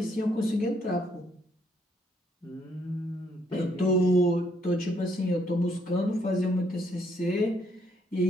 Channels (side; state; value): both; normal; correlation 0.71